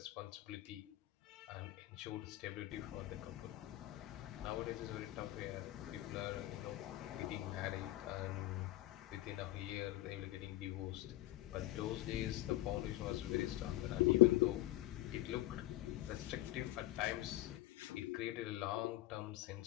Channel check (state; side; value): quieter; right; 16.0 dB